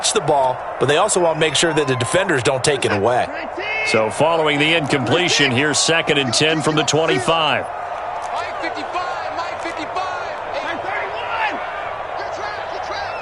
the ball, but they also want to make sure that the defenders don't take it away. So following the incompletion, here's 2nd and 10 from the 25.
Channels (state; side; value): identical; both; correlation 1.00